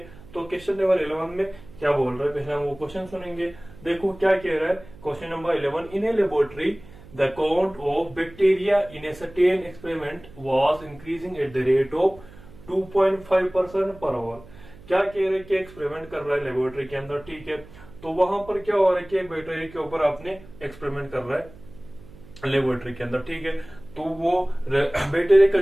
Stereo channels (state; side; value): noise; right; hum, 20 dB below the sound